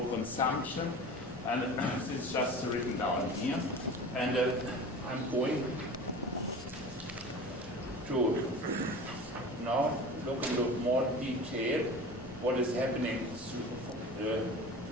consumption, and this is just written down here. And I'm going to now look into more detail what is happening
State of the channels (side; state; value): both; normal; correlation 0.36